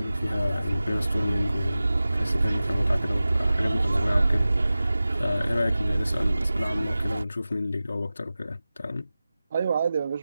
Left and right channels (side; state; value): both; inverted; correlation -0.95